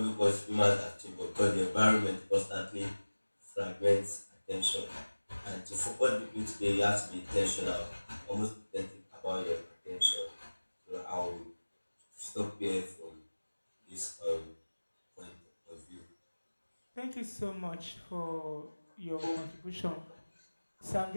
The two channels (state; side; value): inverted; both; correlation -1.00